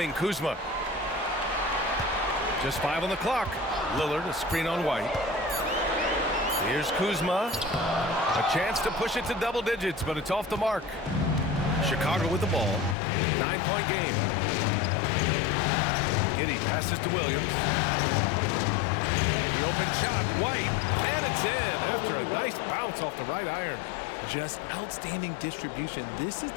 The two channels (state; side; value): drops out; right; at 13.0 s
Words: Kuzma. Just 5 on the clock. Lillard, a screen on White. Here's Kuzma. A chance to push it to double digits, but it's off the mark. Chicago with the ball. 9-point game. Giddey passes to Williams. The open shot, White, and it's in after a nice bounce off the right iron. Just outstanding distribution. This is